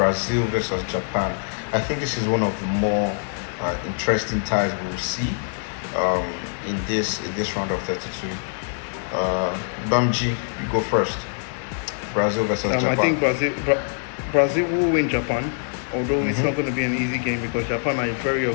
versus Japan. I think this is one of the more interesting ties we'll see um, in this round of 32. Bamji, you go first. Brazil versus I Japan. think Brazil will win Japan, although it's not going to be an easy game because Japan are a very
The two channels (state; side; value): silent; right; 62 dB below the other